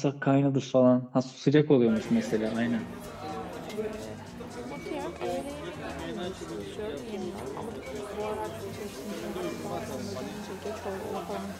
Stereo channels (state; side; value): identical; both; correlation 1.00